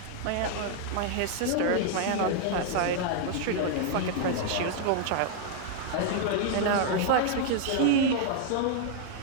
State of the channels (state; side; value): different; both; correlation -0.01